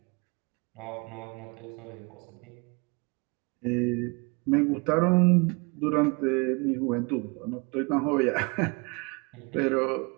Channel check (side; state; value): left; quieter; 30.2 dB